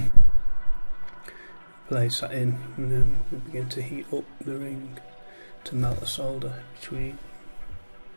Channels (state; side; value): inverted; both; correlation -1.00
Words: place that in, and then we begin to heat up the ring to melt the solder between.